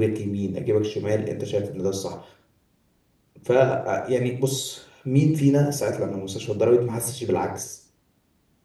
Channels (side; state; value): both; identical; correlation 1.00